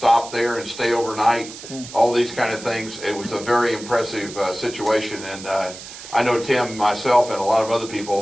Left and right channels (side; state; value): right; noise; hiss, 14 dB below the sound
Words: there and stay overnight, all these kind of things. It was a very impressive situation, and I know Tim, myself, and a lot of other